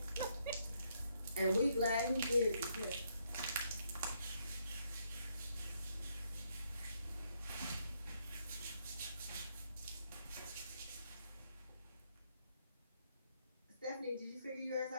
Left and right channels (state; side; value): inverted; both; correlation -0.74